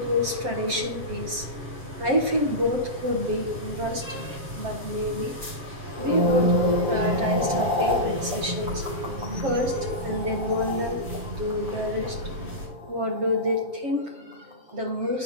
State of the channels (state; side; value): late; left; 7.5 ms